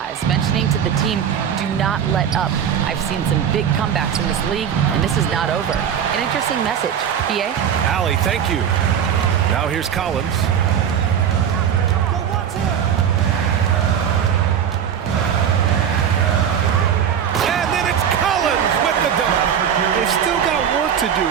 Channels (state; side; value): quieter; left; 8.5 dB